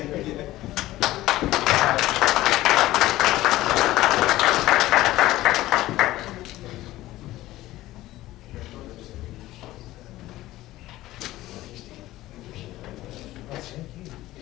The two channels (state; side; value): quieter; right; 16.3 dB